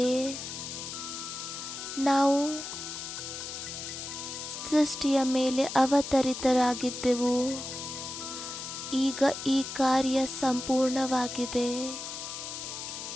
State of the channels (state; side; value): noise; left; hiss, 7 dB below the sound